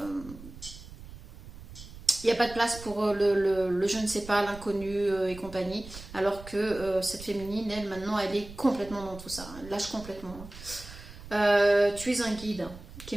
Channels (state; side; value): noise; right; rumble, 15 dB below the sound